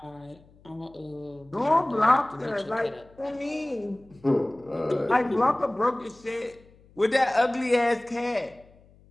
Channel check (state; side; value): noise; left; hum, 27 dB below the sound